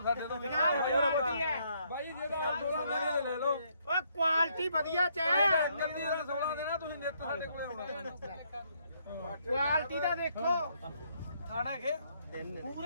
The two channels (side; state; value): both; inverted; correlation -0.71